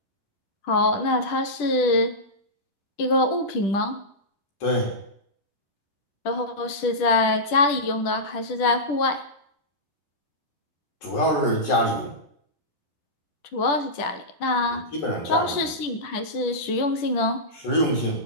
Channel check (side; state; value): right; late; 10 ms